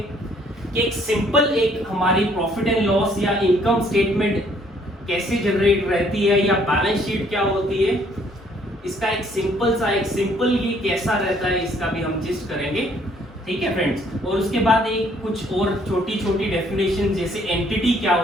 एक सिंपल एक हमारी प्रॉफिट एंड लॉस या इनकम स्टेटमेंट कैसे जनरेट रहती है, या बैलेंस शीट क्या होती है, इसका एक सिंपल ये कैसा रहता है, इसका भी हम जिस्ट करेंगे, ठीक है फ्रेंड्स। और उसके बाद एक कुछ और छोटी छोटी डेफिनेशन, जैसे एंटिटी क्या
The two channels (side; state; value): both; normal; correlation 0.64